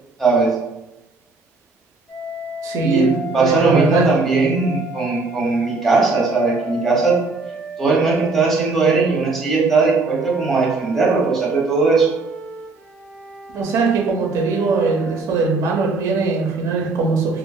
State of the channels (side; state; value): left; quieter; 3.7 dB